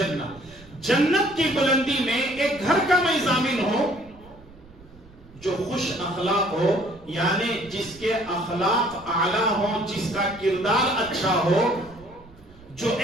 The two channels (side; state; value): right; noise; rumble, 24 dB below the sound